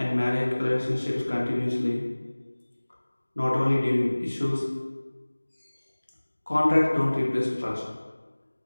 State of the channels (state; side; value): inverted; both; correlation -1.00